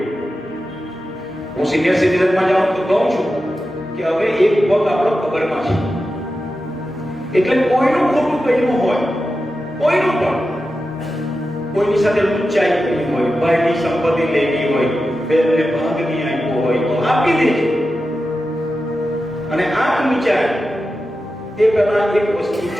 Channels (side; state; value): both; normal; correlation 0.91